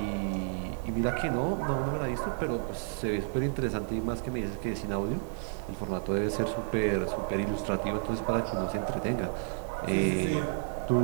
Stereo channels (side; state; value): left; silent; 57 dB below the other